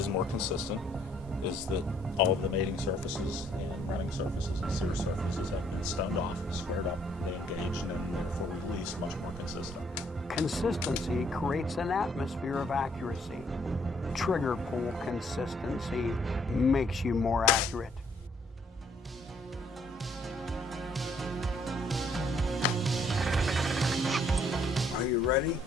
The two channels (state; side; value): normal; both; correlation 0.66